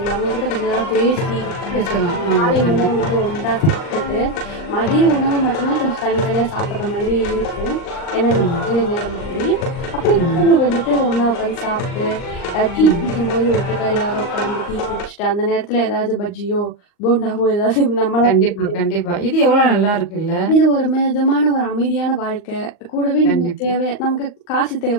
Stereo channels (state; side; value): late; right; 39 ms